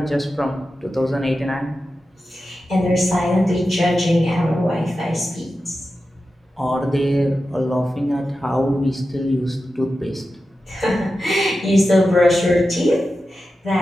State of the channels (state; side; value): normal; both; correlation 0.92